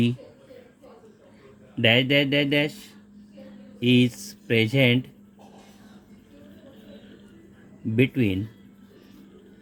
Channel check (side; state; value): both; identical; correlation 1.00